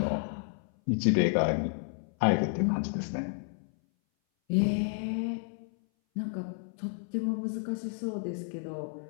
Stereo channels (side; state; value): right; silent; 57 dB below the other